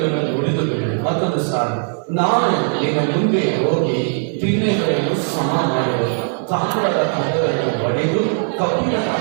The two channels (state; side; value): silent; left; 55 dB below the other